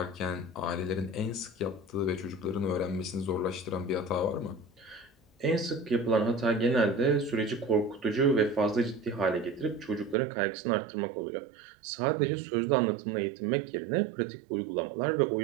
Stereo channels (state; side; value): drops out; left; at 10.2 s